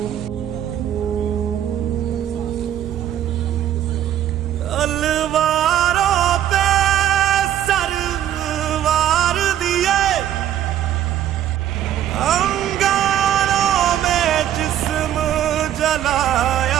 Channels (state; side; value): quieter; left; 11.2 dB